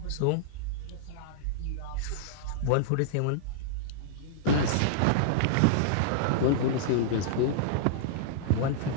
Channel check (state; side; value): different; both; correlation -0.02